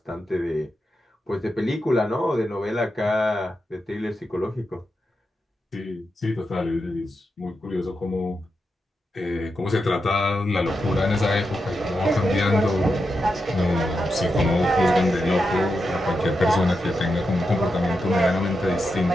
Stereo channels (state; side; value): normal; both; correlation 0.87